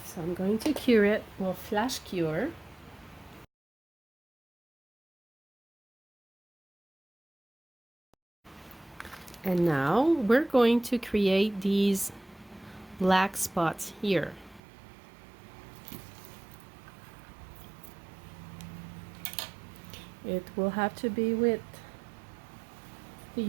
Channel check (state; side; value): drops out; left; at 14.6 s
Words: So I'm going to cure it. We'll flash cure. And now we're going to create these black spots here. It will have to be with the